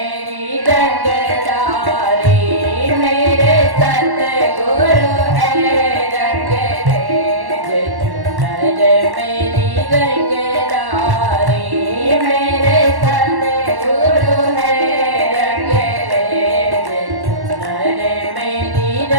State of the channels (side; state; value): left; late; 1.1 ms